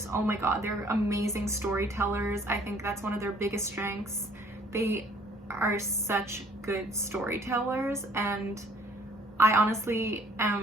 Oh my god, they're amazing storytellers. I think that's one of their biggest strengths. They are such good storytellers, and I honestly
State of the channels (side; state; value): both; normal; correlation 0.58